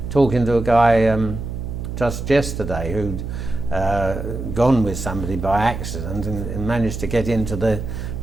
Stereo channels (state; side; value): noise; right; hum, 6 dB below the sound